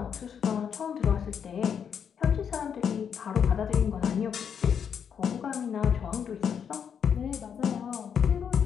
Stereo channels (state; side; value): quieter; right; 7.6 dB